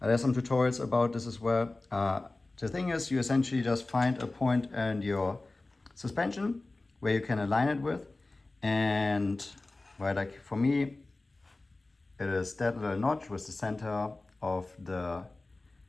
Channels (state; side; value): quieter; right; 3.1 dB